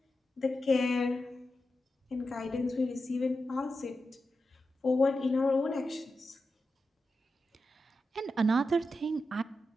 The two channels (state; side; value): normal; both; correlation 0.90